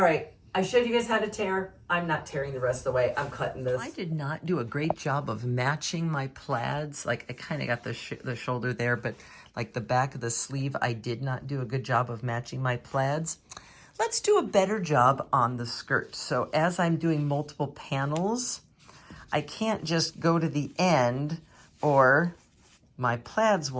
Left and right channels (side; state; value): both; identical; correlation 1.00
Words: right, I showed you guys how to tear. I'm not tearing the rest of the way. I'm cutting this. I did not do a great job of matching my plaids. Like, I kind of got the shoulder there, but like the back of the sleeve, I did not do a good job of matching my plaids. Let's do a better job on the skirt. So as I'm doing multiple panels, I can't just go to the end or my plaids